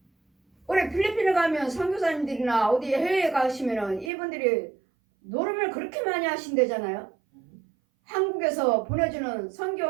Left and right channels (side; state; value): left; drops out; at 4.1 s